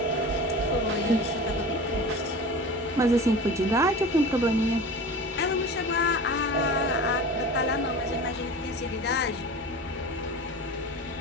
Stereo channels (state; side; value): normal; both; correlation 0.34